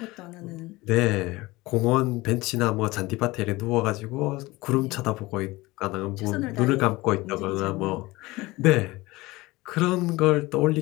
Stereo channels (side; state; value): right; quieter; 20.7 dB